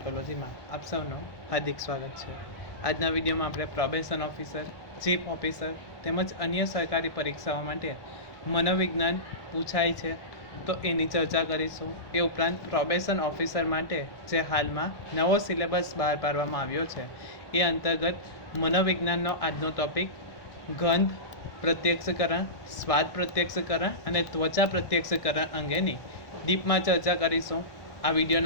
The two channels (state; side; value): late; right; 1.2 ms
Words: આપ સૌનું હાર્દિક સ્વાગત છે. આજના વિડીયોમાં આપણે પ્રોબેશન ઓફિસર, ચીફ ઓફિસર તેમજ અન્ય સરકારી પરીક્ષાઓ માટે મનોવિજ્ઞાન પૂછાય છે તો એની ચર્ચા કરીશું. એ ઉપરાંત પ્રોબેશન ઓફિસર માટે જે હાલમાં નવો સિલેબસ બહાર પાડવામાં આવ્યો છે એ અંતર્ગત મનોવિજ્ઞાનનો આજનો ટોપિક ગંધ પ્રત્યક્ષકરણ, સ્વાદ પ્રત્યક્ષકરણ અને ત્વચા પ્રત્યક્ષકરણ અંગેની ડીપમાં ચર્ચા કરીશું. આ વિડીયો